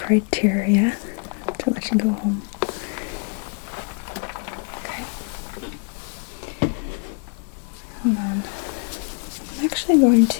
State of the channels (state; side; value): quieter; right; 35.7 dB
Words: criteria to let you go home. Okay. Hold on. I'm actually going